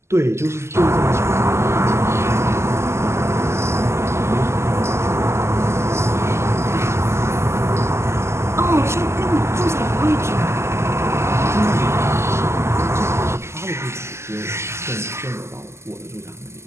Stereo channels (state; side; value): late; left; 0.13 ms